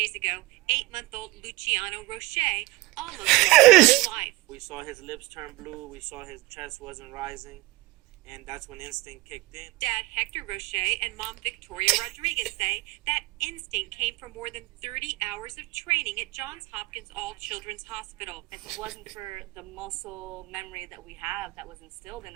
ago, 8-month-old Lucciano Roche almost lost his life. We saw his lips turn blue. We saw his chest wasn't rising. And that's when instinct kicked in. Dad Hector Roche and Mom Victoria Rodriguez say that instinct came from more than 30 hours of training at Johns Hopkins All Children's Hospital. If it wasn't for the muscle memory that we have that was instilled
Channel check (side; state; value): left; quieter; 20.5 dB